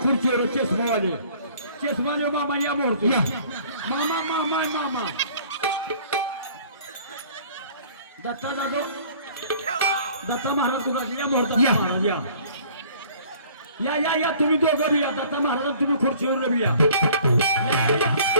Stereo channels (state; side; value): inverted; both; correlation -0.53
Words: खुर्चीवर चष्मावाले मामा या मोरतो मामा मामा मामा दत्ता जाधव दत्ता महाराज तुला या मोरता महाराज या या या या तुम्ही दोघं बी या दत्ता महाराज तुम्ही खुर्चीवर बी या